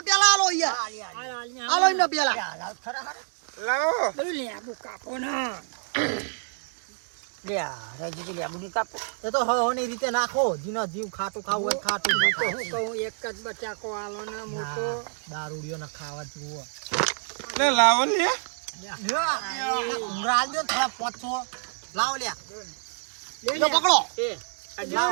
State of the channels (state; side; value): silent; left; digital silence